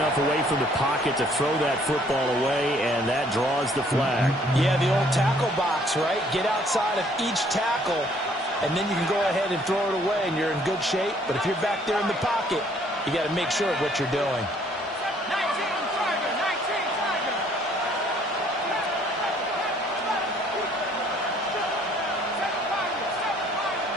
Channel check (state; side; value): normal; both; correlation 0.62